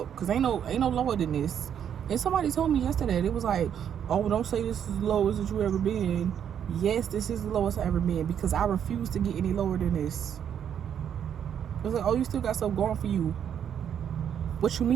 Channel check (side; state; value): left; quieter; 8.8 dB